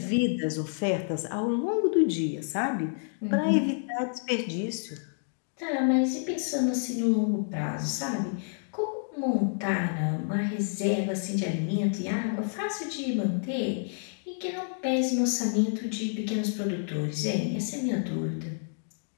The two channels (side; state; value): right; silent; digital silence